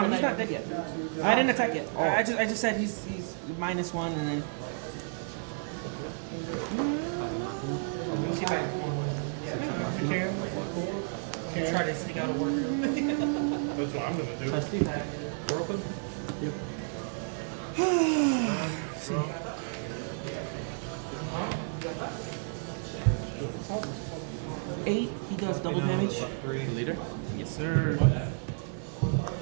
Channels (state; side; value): silent; left; digital silence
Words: he's not dead yet. I didn't attack yet. I just said he's -1 and then. Try to sneak out of work early. That's what I'm gonna do. We're open. Eight, he does double damage. 3 leader. Yes, sir.